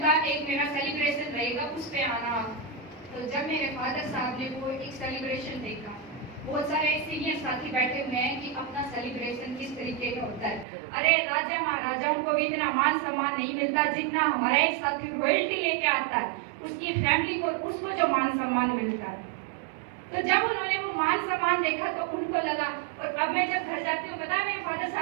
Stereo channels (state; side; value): drops out; left; at 10.7 s